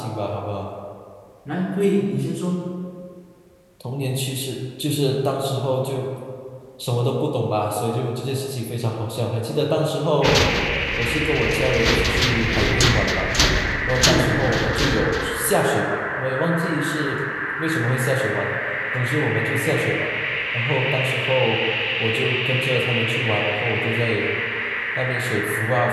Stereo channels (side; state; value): both; identical; correlation 1.00